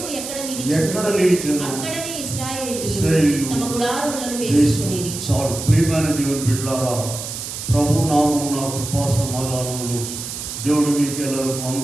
ఎక్కడ నిలిచెను అక్కడనే ఇశ్రాయేలీయులు తమ గుడారములను వేసుకొనిరి. చాలు. ప్రియమైన దేవుని బిడ్డలారా, ప్రభు నామమున కృపా సమాధానములు దేవుడు మీకు ఎల్లరికూ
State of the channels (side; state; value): right; noise; hiss, 7 dB below the sound